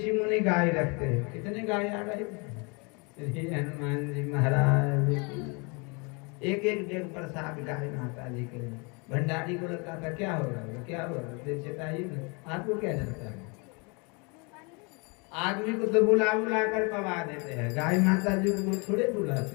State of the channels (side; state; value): right; quieter; 31.6 dB